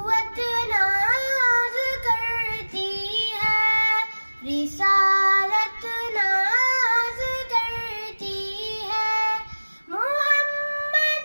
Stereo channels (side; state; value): both; inverted; correlation -1.00